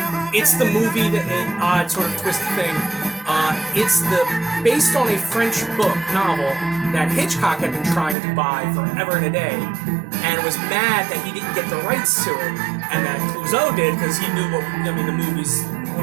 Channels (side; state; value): left; drops out; at 8.2 s